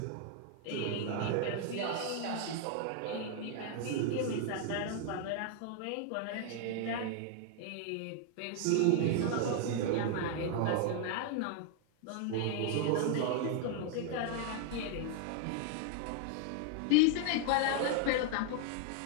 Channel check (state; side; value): different; both; correlation 0.00